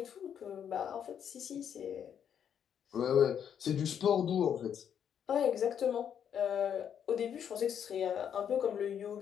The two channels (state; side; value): quieter; right; 8.5 dB